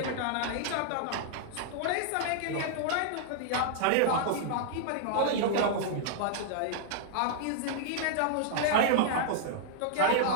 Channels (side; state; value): both; different; correlation -0.01